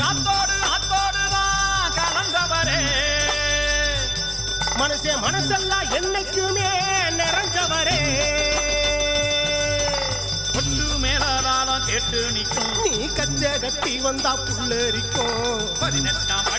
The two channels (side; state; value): both; identical; correlation 1.00